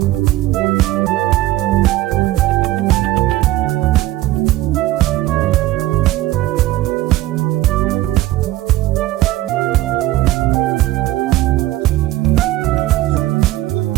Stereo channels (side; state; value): left; quieter; 16.0 dB